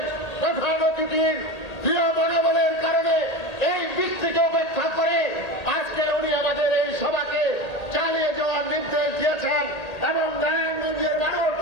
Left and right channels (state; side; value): late; right; 1.8 ms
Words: প্রধান অতিথির প্রিয় মনোবলের কারণে এই বৃষ্টিকে উপেক্ষা করে আজকে উনি আমাদের এই সভাকে চালিয়ে যাওয়ার নির্দেশ দিয়েছেন এবং নারায়ণগঞ্জের মানুষ